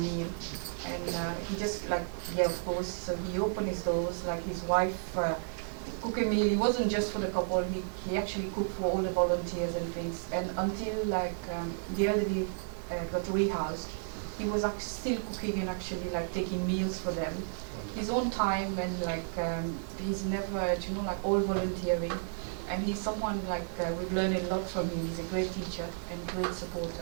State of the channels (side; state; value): left; silent; digital silence